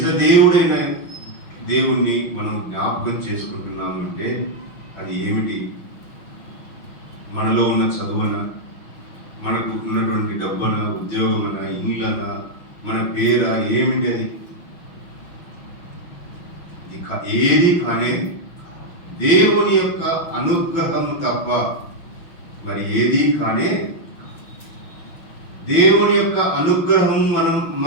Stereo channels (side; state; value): right; late; 6.0 ms